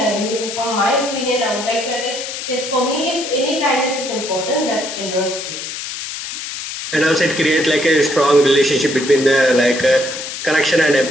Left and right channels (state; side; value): noise; left; hiss, 7 dB below the sound